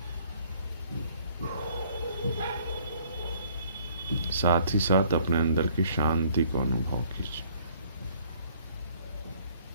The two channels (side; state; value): both; inverted; correlation -0.60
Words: साथ ही साथ अपने अंदर की शांति को अनुभव कीजिए.